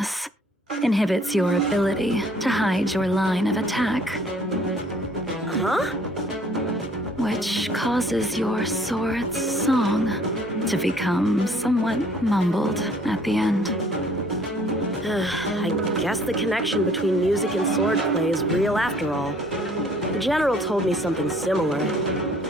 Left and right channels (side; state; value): both; normal; correlation 0.58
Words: inhibits your ability to hide your line of attack, Huh? which causes your sword's song to become somewhat mumbled at the end. I guess the connection between music and swordplay is real after all. The general told me something similar.